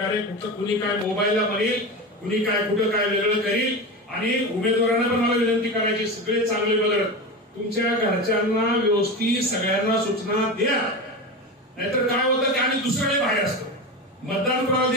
कुठं कुणी काय मोबाईलला म्हणेल, कुणी काय कुठं काय वेगळं करील. आणि उमेदवारांना पण मला विनंती करायची, सगळे चांगले बघत तुमच्या घरच्यांना व्यवस्थित सगळ्यांना सूचना द्या. नाहीतर काय होतं की आम्ही दुसऱ्याकडे बाहेर असतो, मतदान कोणाला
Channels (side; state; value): both; normal; correlation 0.24